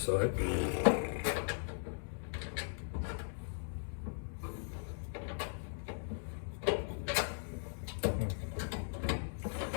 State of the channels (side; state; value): right; silent; digital silence